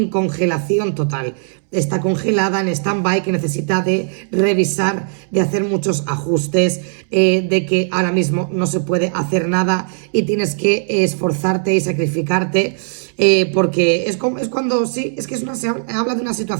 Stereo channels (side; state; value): left; silent; 67 dB below the other